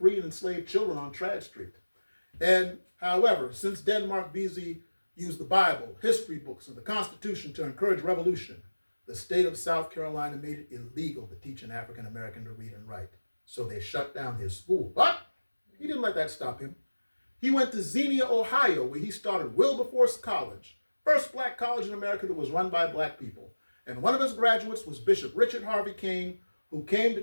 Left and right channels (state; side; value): inverted; both; correlation -1.00